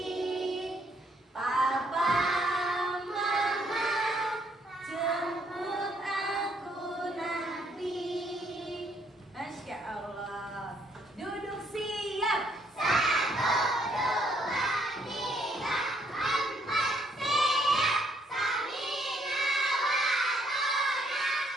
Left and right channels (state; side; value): normal; both; correlation 0.69